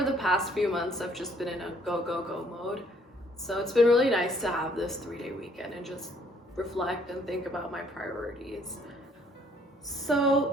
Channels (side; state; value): both; normal; correlation 0.63